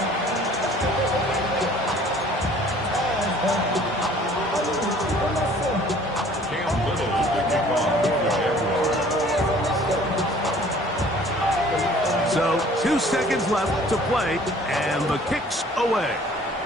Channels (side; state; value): both; normal; correlation 0.53